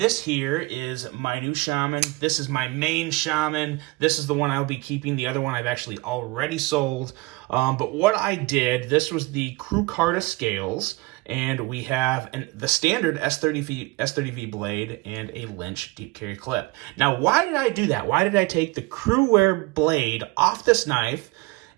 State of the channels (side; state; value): left; quieter; 23.2 dB